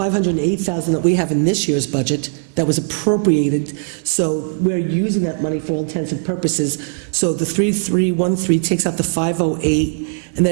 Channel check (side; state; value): left; silent; 67 dB below the other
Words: that we have in this year's budget that was appropriated. So we're using that money for all intents and purposes. So the 3313 takes out the 508, and